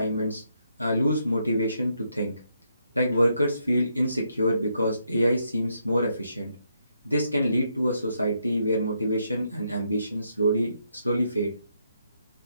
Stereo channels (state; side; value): inverted; both; correlation -0.77